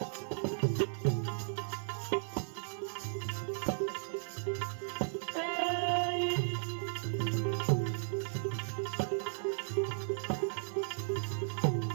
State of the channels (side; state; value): left; silent; 54 dB below the other